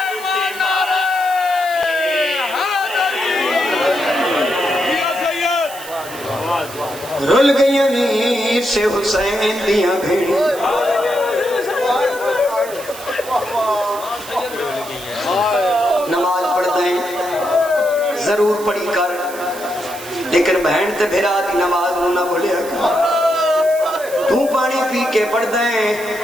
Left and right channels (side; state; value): right; noise; hiss, 15 dB below the sound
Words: رل گئی نیت سے حسین دیاں بھیڑی نماز پڑھ دیں ضرور پڑھی کر لیکن بہن تے بھیرا دی نماز نہ بھولیا تو پانی پی کے پڑھ دیں